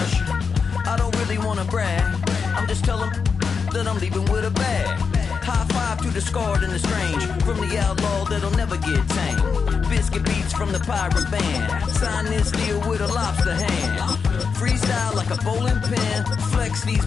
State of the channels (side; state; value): right; quieter; 5.6 dB